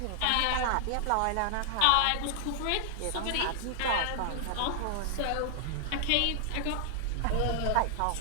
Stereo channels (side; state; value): both; different; correlation 0.00